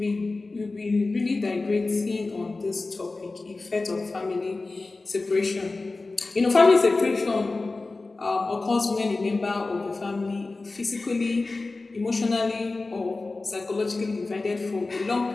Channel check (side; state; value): right; quieter; 3.5 dB